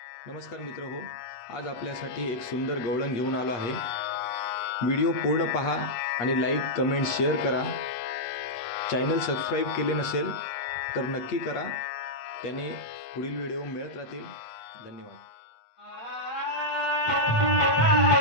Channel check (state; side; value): late; right; 8.4 ms